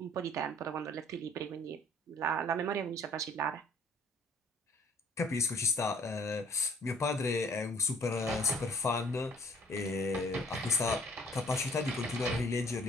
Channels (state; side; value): normal; both; correlation 0.57